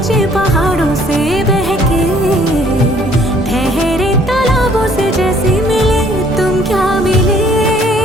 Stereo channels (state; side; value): normal; both; correlation 0.60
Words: पहाड़ों से बहके ठहरे तालाबों से जैसे मिले। तुम क्या मिले,